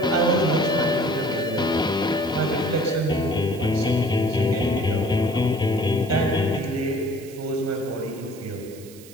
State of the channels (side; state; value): right; noise; hiss, 21 dB below the sound